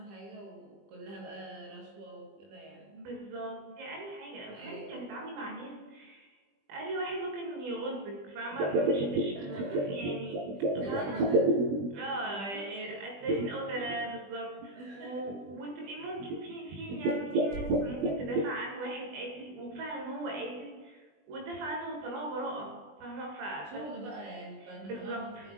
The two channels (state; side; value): late; left; 20 ms